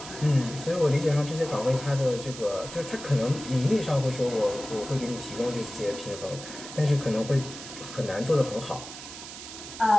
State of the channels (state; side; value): noise; right; hiss, 12 dB below the sound